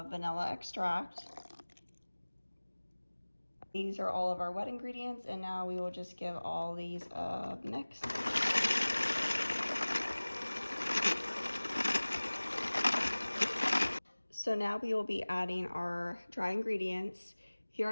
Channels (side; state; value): both; inverted; correlation -1.00